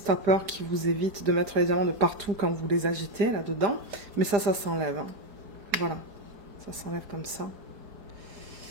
qui vous évite de mettre les diamants de partout quand vous les agitez là-dedans. Mais ça s'enlève. Hein. Voilà, ça s'enlève comme ça.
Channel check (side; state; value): left; late; 4.9 ms